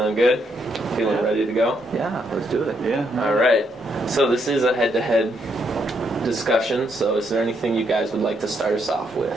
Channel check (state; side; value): normal; both; correlation 0.76